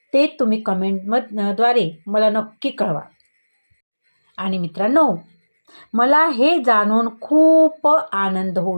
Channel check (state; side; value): inverted; both; correlation -1.00